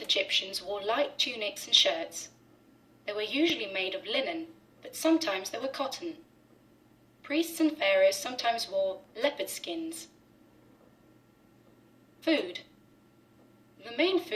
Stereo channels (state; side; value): identical; both; correlation 1.00